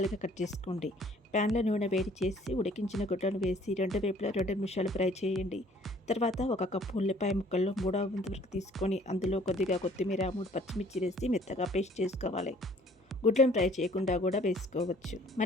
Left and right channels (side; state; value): both; normal; correlation 0.57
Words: కట్ చేసుకోండి. ప్యాన్లో నూనె వేడి చేసి ఉడికించిన గుడ్లను వేసి 2 వైపులా 2 నిమిషాలు ఫ్రై చేయండి. తర్వాత 1 కప్పు ఉల్లిపాయ ముక్కలు 3/4 వంతు వరకు తీసుకొని అందులో కొద్దిగా కొత్తిమీర, 3 పచ్చిమిర్చి వేసి మెత్తగా పేస్ట్ చేసుకోవాలి. గుడ్లను ఫ్రై చేయకుండా కూడా వేసుకోవచ్చు.